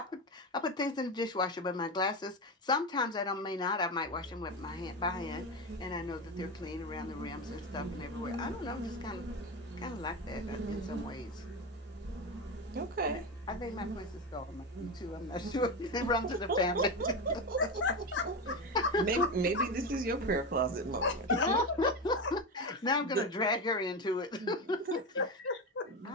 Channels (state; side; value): normal; both; correlation 0.18